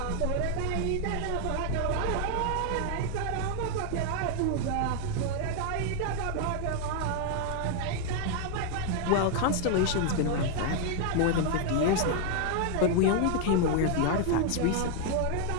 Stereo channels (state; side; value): different; both; correlation 0.00